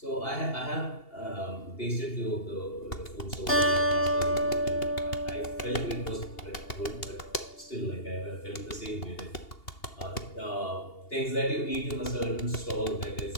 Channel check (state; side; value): late; right; 2.8 ms